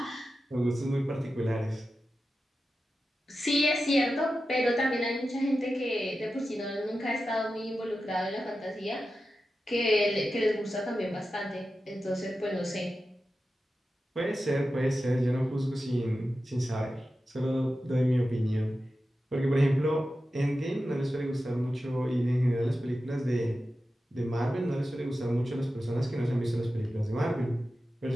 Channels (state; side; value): normal; both; correlation 0.92